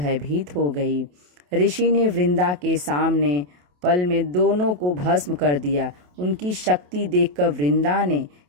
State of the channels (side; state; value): left; late; 28 ms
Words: हो गई। ऋषि ने वृंदा के सामने पल में दोनों को भस्म कर दिया। उनकी शक्ति देखकर वृंदा ने